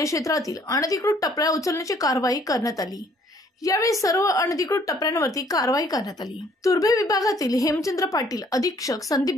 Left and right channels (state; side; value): normal; both; correlation 0.61